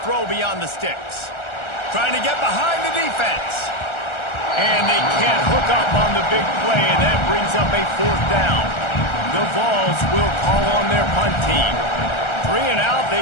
throw beyond the sticks. Trying to get behind the defense. And they can't hook up on the big play, and that brings up a 4th down. The Vols will call on their punt team. 3 and out, they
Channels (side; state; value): right; late; 1.3 ms